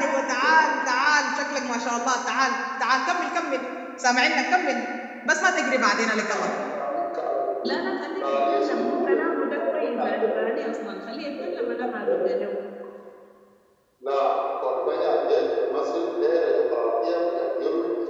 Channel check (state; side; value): identical; both; correlation 1.00